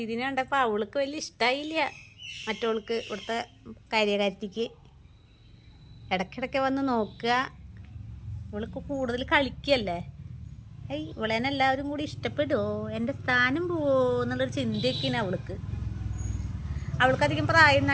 കണ്ടപ്പോൾ അവൾക്ക് വലിയ ഇഷ്ടമായില്ല. മറ്റവൾക്ക് ഇവിടുത്തെ കാര്യകാരത്തിക്ക് ഇടയ്ക്കിടയ്ക്ക് വന്ന് നോക്കുക. ഇവൾക്ക് കൂടുതൽ കളിക്കല്ലേ. ഇവളേനെ എല്ലാവരും കൂടി ഇഷ്ടപ്പെടുമോ, എൻ്റെ സ്ഥാനം പോവോ എന്നുള്ളൊരു ചിന്തയൊക്കെയാണ് അവൾക്ക്. അവൾക്കധികം പ്രായമൊന്നും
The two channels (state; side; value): identical; both; correlation 1.00